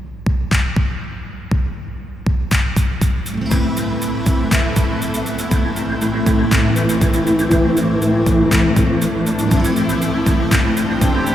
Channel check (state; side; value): normal; both; correlation 0.85